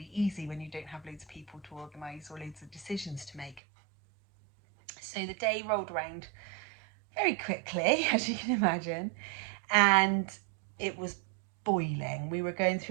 easy when you don't have loads of people to organise or loads of decisions to make. So the day rolled around very quickly, as you can imagine, and it was boiling. We were going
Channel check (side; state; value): left; drops out; at 3.6 s